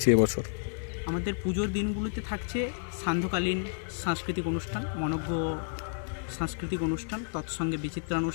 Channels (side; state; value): right; silent; 55 dB below the other